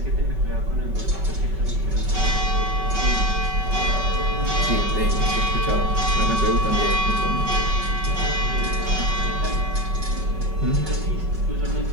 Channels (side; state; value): left; late; 5.3 ms